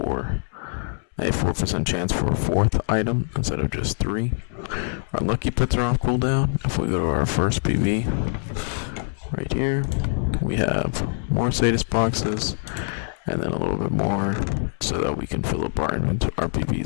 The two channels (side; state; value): right; silent; 63 dB below the other